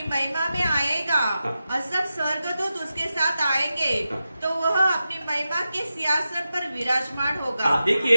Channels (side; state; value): both; inverted; correlation -0.91